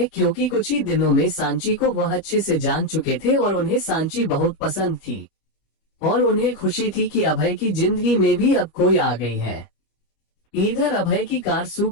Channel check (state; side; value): late; right; 25 ms